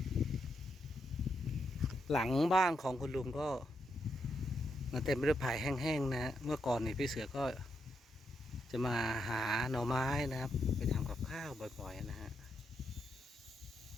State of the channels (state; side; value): normal; both; correlation 0.81